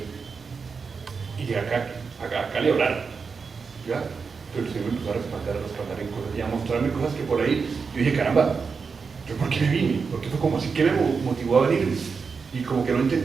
Y acá le oraron. ¿Ya? Pero el Señor me empezó a respaldar en cosas y a mostrarme cosas que por ahí yo dije, caramba, ¿yo por qué me vine? Porque fue como así que me motivó a venir. Y como que no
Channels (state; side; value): quieter; left; 5.3 dB